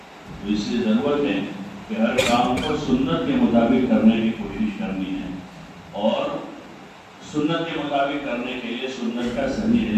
اس لیے ضرورت ہے کہ ہر کام کو سنت کے مطابق کرنے کی کوشش کرنی ہے، اور سنت کے مطابق کرنے کے لیے سنت کا صحیح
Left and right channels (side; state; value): both; identical; correlation 1.00